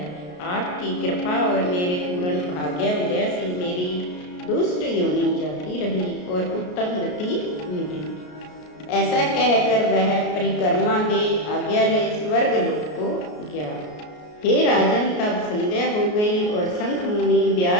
आपकी कृपा और मेरे पूर्ण भाग्य उदय से मेरी दुष्ट योनि जाती रही और उत्तम गति मिली। ऐसा कहकर वह परिक्रमा दे आज्ञा ले स्वर्ग लोक को गया। हे राजन, तब संध्या हो गई और शंख मुनि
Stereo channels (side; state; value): right; late; 33 ms